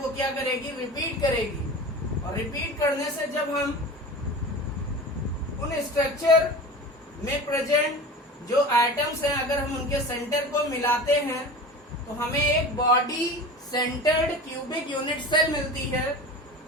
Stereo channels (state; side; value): normal; both; correlation 0.34